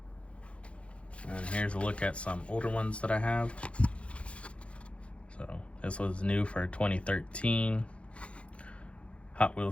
And here's a look at some older ones that I have. So this was new for 2013. Hot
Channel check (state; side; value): late; right; 0.061 ms